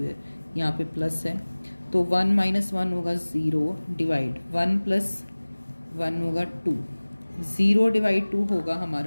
यहाँ पे प्लस है, तो 1 - 1 होगा 0 डिवाइड 1 + 1 होगा 2, 0 डिवाइड 2 होगा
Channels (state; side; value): inverted; both; correlation -1.00